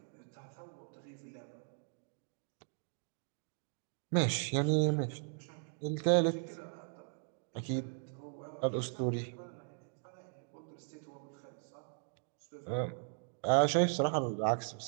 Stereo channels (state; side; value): silent; left; digital silence